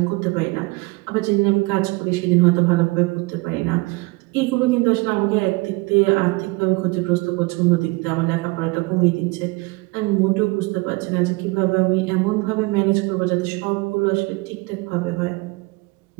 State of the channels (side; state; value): left; quieter; 25.0 dB